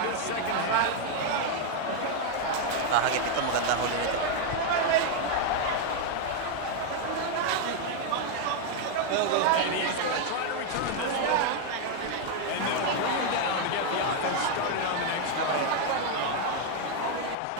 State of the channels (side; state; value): both; different; correlation 0.00